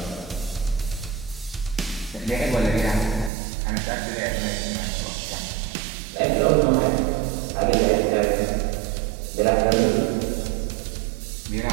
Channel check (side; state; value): left; drops out; at 3.3 s